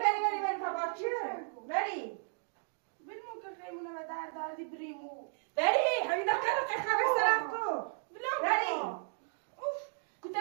تا چه بری بلمو که خیمونه و دردی بریمو بری همین دکتر رو که خبر سرخ کو بری اوف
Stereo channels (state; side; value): silent; left; digital silence